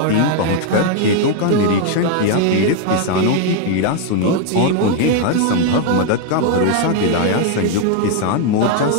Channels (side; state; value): both; different; correlation 0.00